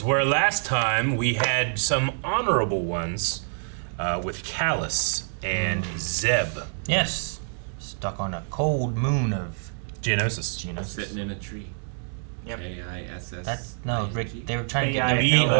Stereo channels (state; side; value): silent; left; 61 dB below the other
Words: where last time we had some honorable ones with Callus and Zeb. Yes. Stuck on a cold moon of Geonosis. Sitting in a tree. Yep. K-I-S-S. That's no, Rick. They were trying to get their